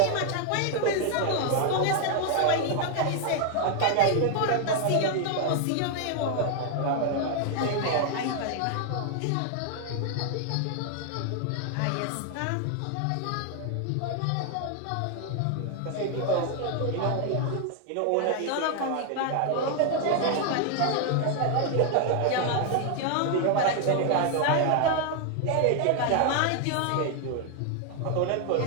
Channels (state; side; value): different; both; correlation 0.00